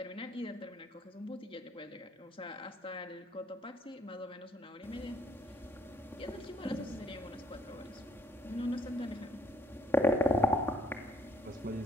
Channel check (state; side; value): normal; both; correlation 0.67